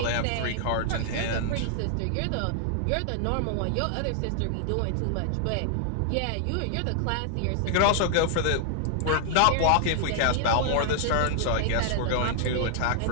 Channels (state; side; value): different; both; correlation -0.01